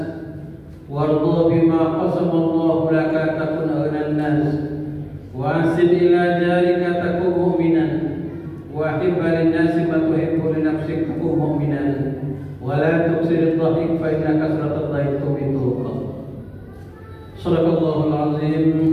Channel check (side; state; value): both; identical; correlation 1.00